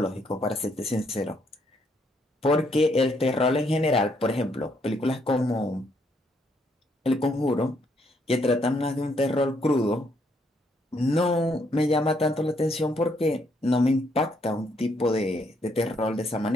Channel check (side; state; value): both; normal; correlation 0.72